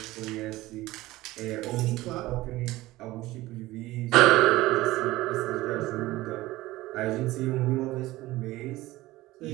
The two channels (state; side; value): quieter; left; 18.0 dB